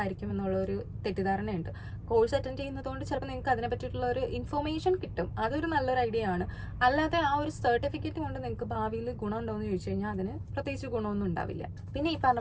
എന്നുള്ളൊരു തെറ്റിദ്ധാരണയുണ്ട്. കോഴ്സ് അറ്റൻഡ് ചെയ്യുന്നതുകൊണ്ട് ചിലപ്പോൾ നിങ്ങൾക്ക് അതിനെ പറ്റിയിട്ടുള്ള ഒരു ഇൻഫോർമേഷൻ കിട്ടും, അതൊരു നല്ലൊരു ഐഡിയ ആണ്. അല്ലാതെ ആ ഒരു സർട്ടിഫിക്കറ്റ് കൊണ്ട് നിങ്ങൾക്ക് ഭാവിയിൽ ഗുണം ഉണ്ടോ എന്ന് ചോദിച്ചു കഴിഞ്ഞാൽ അതിന് പ്രത്യേകിച്ച് ഗുണമൊന്നും ഉണ്ടാവില്ല. പിന്നെ ഈ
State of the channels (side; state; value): both; identical; correlation 1.00